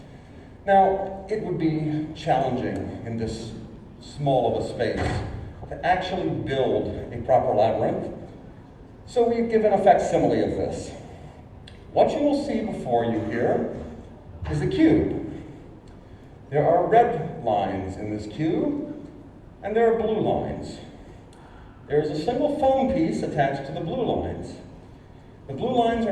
Now, it would be challenging in this small of a space to actually build a proper labyrinth. So we've given a facsimile of this. What you will see before you here is a cube. There are red lines in this cube, and there are blue lines. There's a single foam piece attached to the blue lines. The blue lines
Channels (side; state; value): both; identical; correlation 1.00